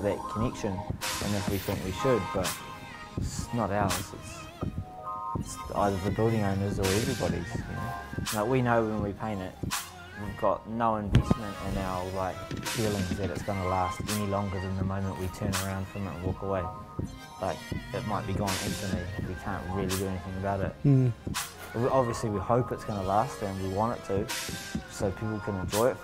that connection and if we think we should, but it's not ours. It's either the building owners or everybody's. You know. Like, we know when we paint it, we've got no investment in our feelings that it's going to last any longer than the moment we turn around from it and walk away. Like, it might be gone instantly. We can't really do anything about it. Obviously, we hope it's going to last and we want it to, so people can enjoy it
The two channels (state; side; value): identical; both; correlation 1.00